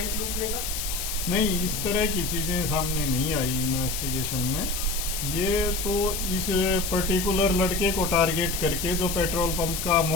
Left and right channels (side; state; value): left; noise; hiss, 4 dB below the sound